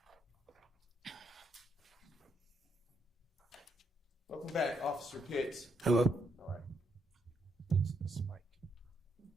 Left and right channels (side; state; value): both; normal; correlation 0.75